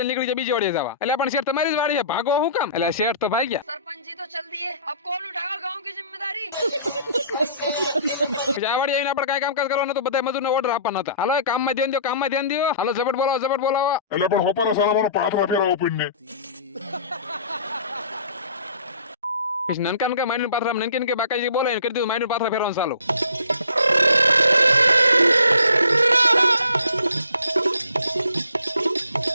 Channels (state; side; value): inverted; both; correlation -0.51